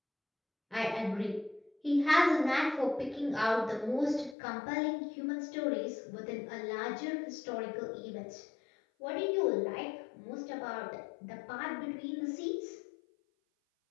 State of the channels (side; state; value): right; drops out; at 4.4 s